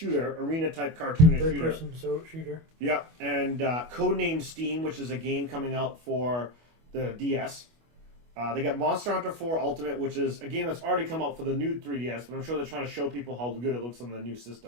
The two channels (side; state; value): left; late; 25 ms